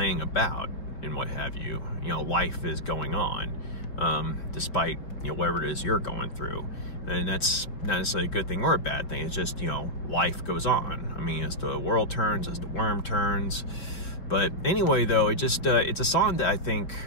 about and what have you. Life is going on, despite whatever it is you're going through. And that's not necessarily a good thing or a bad thing. It's just life goes on. As the world turns, as the worm turns. But anyway, though, it's a song that I think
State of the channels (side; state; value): right; late; 5.5 ms